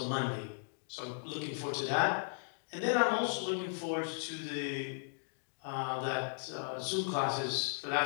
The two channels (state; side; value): silent; right; digital silence